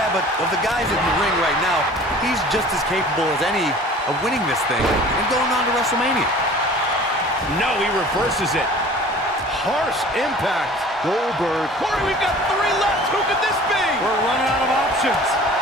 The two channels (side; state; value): both; normal; correlation 0.46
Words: but of the guys in the ring right now, he's just as capable as any of winning this thing and going on to WrestleMania. No, he reverses it. Harsh impact. Goldberg. Corey, we've got 3 left. Who could this be? We're running out of options.